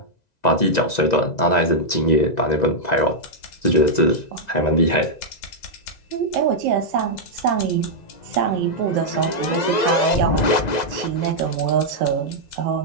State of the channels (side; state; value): right; late; 1.9 ms